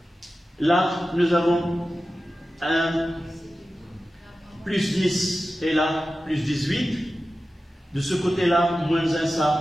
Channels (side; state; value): both; normal; correlation 0.94